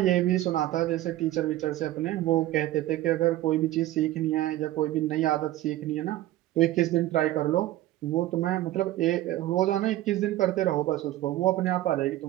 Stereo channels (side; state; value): left; quieter; 15.3 dB